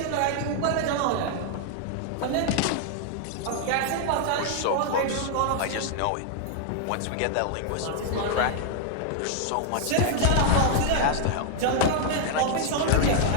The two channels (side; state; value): both; different; correlation 0.00